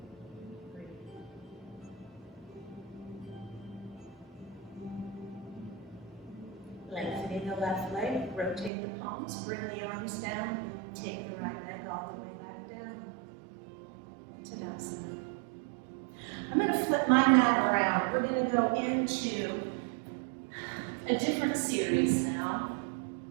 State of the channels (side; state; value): left; drops out; at 8.7 s